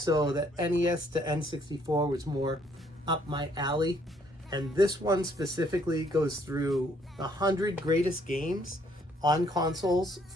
the NES to N64 was more up my alley. And this one specifically goes through the 100 greatest games on consoles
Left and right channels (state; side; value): normal; both; correlation 0.66